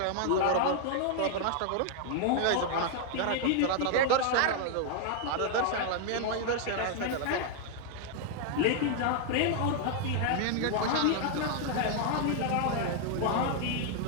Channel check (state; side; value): different; both; correlation 0.00